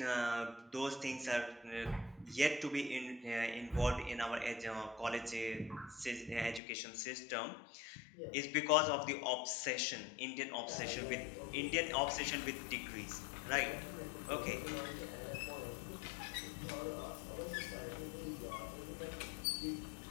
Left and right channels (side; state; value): right; drops out; at 6.6 s